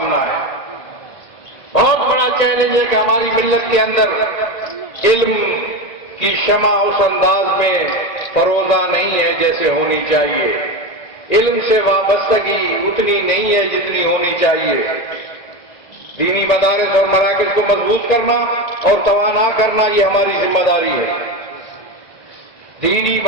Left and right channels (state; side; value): late; right; 1.9 ms